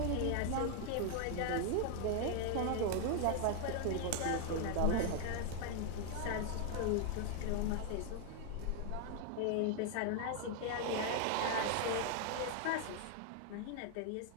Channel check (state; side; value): different; both; correlation 0.00